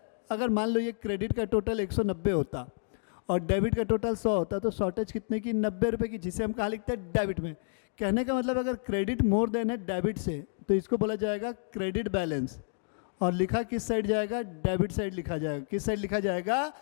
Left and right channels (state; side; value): silent; right; digital silence